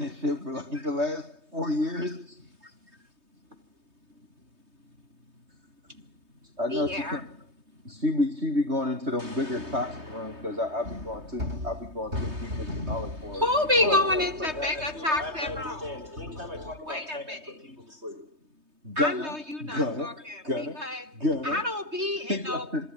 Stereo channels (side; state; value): left; late; 3.2 ms